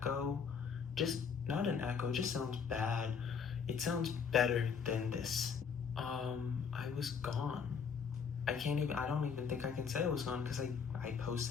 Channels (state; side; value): quieter; right; 6.4 dB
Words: just not an echo, it just sounds bad. It sounds better than this. I was gone. I don't even think I can say I was gone, because I